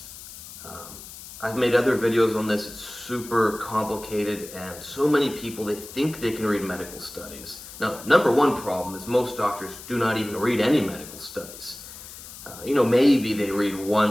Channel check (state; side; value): noise; left; hiss, 15 dB below the sound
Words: I've made other videos on this. It's super complicated, and so many people, they think they can read medical studies. Now, number one problem is most doctors do not even read any medical studies. Maybe they read